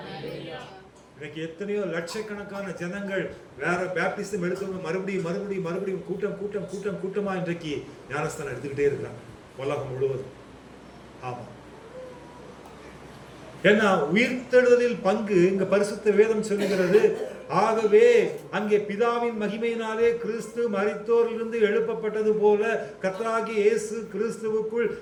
இன்னைக்கு எத்தனையோ லட்சக்கணக்கான ஜனங்கள் வேற பேப்டிசம் எடுத்தவங்க மறுபடியும் கூட்டமா இன்றைக்கு ஞானஸ்தானம் எடுத்துக்கிட்டே இருக்கிறாங்க உலகம் முழுவதும். ஆமா, ஏன்னா உயிர்த்தெழுதலில் பங்கு இங்க பரிசுத்த வேதம் சொல்லுகிறது. ஆகவே அங்கே பிதாவின் மகிமையினாலே கிறிஸ்து மரித்தோரிலிருந்து எழுப்பப்பட்டது போல கர்த்தராகிய இயேசு கிறிஸ்துவுக்குள்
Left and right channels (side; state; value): both; identical; correlation 1.00